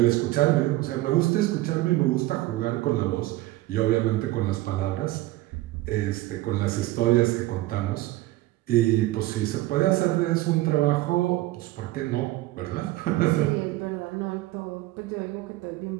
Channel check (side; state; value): left; quieter; 17.5 dB